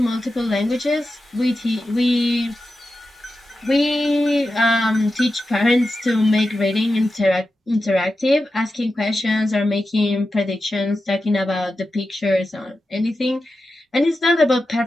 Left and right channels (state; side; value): normal; both; correlation 0.91